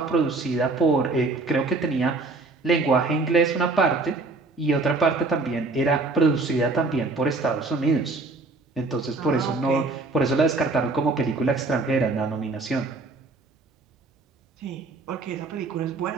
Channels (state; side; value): quieter; left; 3.6 dB